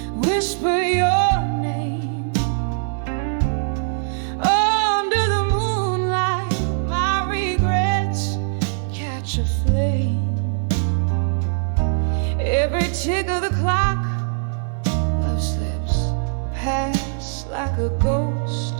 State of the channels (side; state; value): left; silent; digital silence